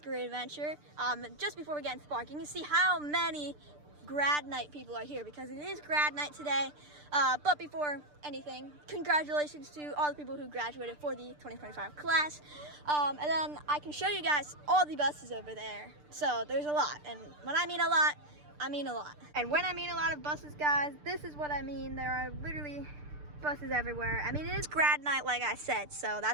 Great Adventure. Just before we get into the park, you can see how many grad night people are here because it is grad night today. But before anything, congratulations to all the people who graduated for the 2025 class. And then I can show you guys all the buses over there. So there's a lot, and when I mean a lot, I mean a lot. And when I mean a lot of buses, guys, this is what I mean. There are literally buses everywhere. I mean, it is grad night, like I said, so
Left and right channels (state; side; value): late; left; 6.7 ms